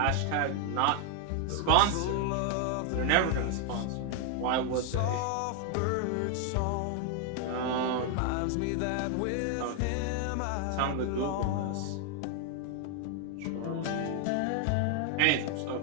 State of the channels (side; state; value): both; different; correlation 0.00